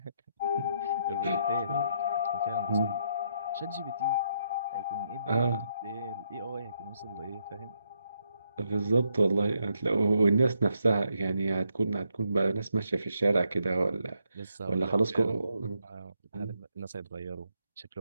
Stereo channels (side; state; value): both; inverted; correlation -0.77